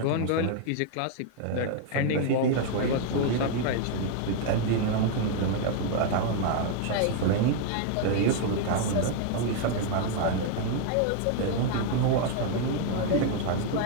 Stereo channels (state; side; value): different; both; correlation 0.00